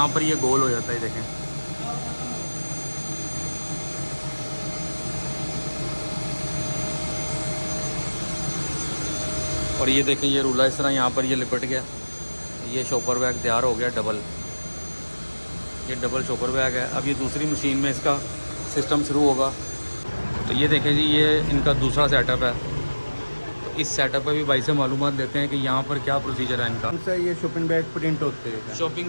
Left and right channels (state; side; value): inverted; both; correlation -1.00